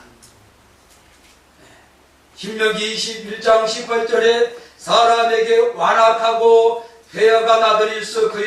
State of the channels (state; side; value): identical; both; correlation 1.00